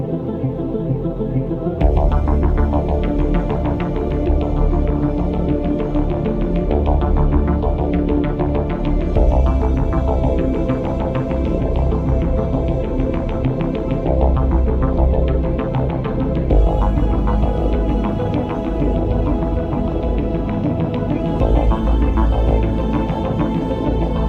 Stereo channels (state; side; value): identical; both; correlation 1.00